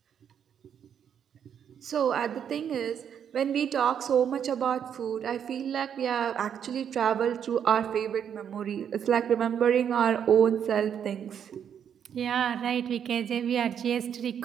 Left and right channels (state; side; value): quieter; left; 8.5 dB